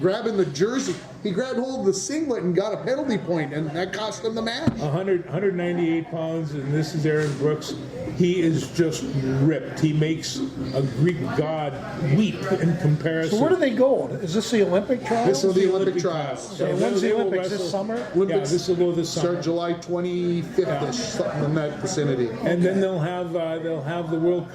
the jersey. He grabbed hold of the singlet and got a penalty point, and that cost him the match. 198 pounds, and this is Aaron Brooks. He is just ripped. He makes a Greek god weep in comparison. So where do they go? Is this the Olympic trials? This is the Olympic trials. So when's the they will Olympics, this wrestle- summer? Yeah, this will go this summer. Start July 25th-ish, something in that vicinity. And then they'll have the World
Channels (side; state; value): both; identical; correlation 1.00